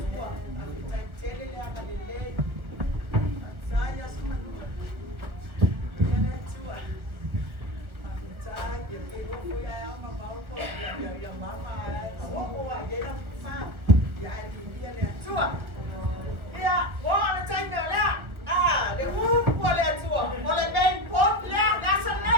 A me tai tele le anga le lei. Saya semanua. Ia le tua. Aku tai ia ke roko ia ama mau ko ia mama ai. O ia na fa. Ia ia le tua. Ia wo le tai me le. Le ko le tua. O le ben pop le na sa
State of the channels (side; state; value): left; late; 1.2 ms